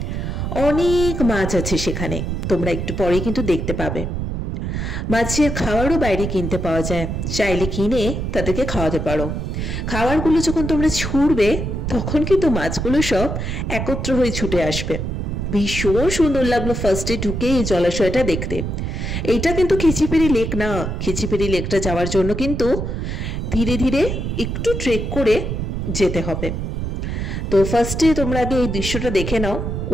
অনেক মাছ আছে সেখানে, তোমরা একটু পরে কিন্তু দেখতে পাবে। মাছের খাবারও বাইরে কিনতে পাওয়া যায়, চাইলে কিনে তাদেরকে খাওয়াতে পারো। খাবারগুলো যখন তোমরা ছুঁড়বে তখন কিন্তু মাছগুলো সব একত্র হয়ে ছুটে আসবে। ভীষণ সুন্দর লাগলো ফার্স্টে ঢুকে এই জলাশয়টা দেখতে। এইটা কিন্তু খিচিপেড়ি লেক না, খিচিপেড়ি লেকটা যাওয়ার জন্য কিন্তু ধীরে ধীরে একটু ট্রেক করে যেতে হবে। তো ফার্স্টে তোমরা আগে এই দৃশ্যটা দেখে নাও,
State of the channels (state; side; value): noise; right; rumble, 3 dB below the sound